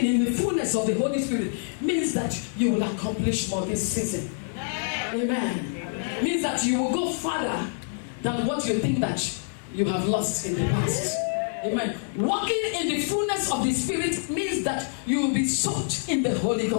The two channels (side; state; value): right; silent; 61 dB below the other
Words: in the fullness of the Holy Spirit means that you will accomplish more this season. Amen. Means that you will go farther than what you think that you have lost in the past. Amen. Walking in the fullness of the Spirit means that you will be soaked in the Holy